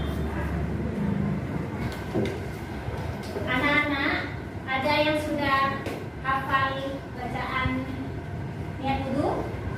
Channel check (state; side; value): identical; both; correlation 1.00